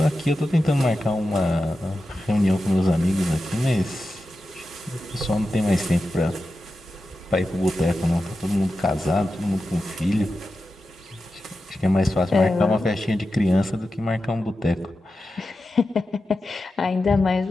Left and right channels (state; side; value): normal; both; correlation 0.92